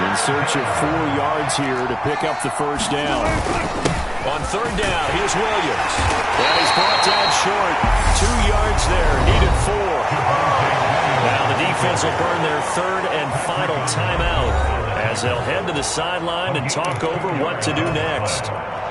search of 4 yards here to pick up the first down. On third down, here's Williams. And he's brought down short. 2 yards there, needed 4. Now the defense will burn their third and final timeout as they'll head to the sideline and talk over what to do next.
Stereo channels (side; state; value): both; identical; correlation 1.00